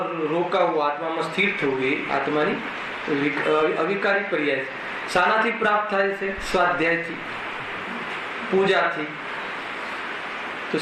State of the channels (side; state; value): both; identical; correlation 1.00